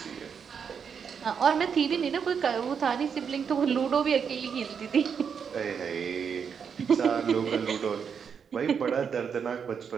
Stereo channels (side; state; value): left; quieter; 6.9 dB